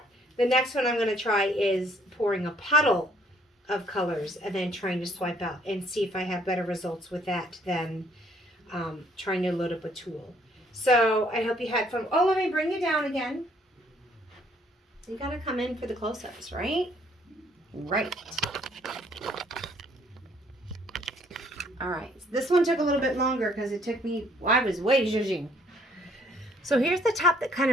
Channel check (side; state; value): both; normal; correlation 0.64